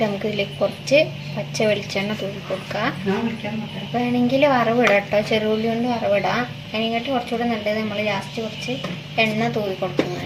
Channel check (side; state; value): both; identical; correlation 1.00